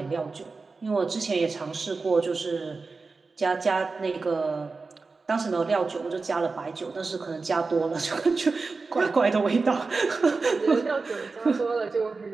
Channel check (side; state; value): left; quieter; 4.1 dB